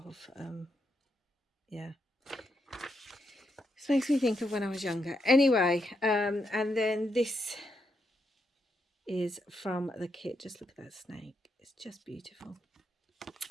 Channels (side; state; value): both; normal; correlation 0.81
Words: yeah. This makes me think of when I was younger. Anyway, and then this is from the kit. Just look at that snake. It's just beautiful.